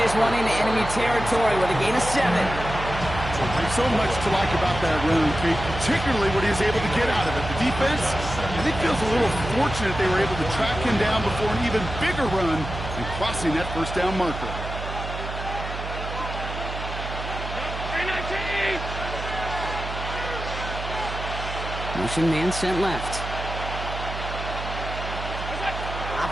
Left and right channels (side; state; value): right; noise; hum, 7 dB below the sound